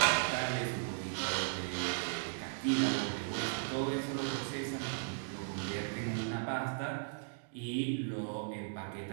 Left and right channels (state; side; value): silent; left; digital silence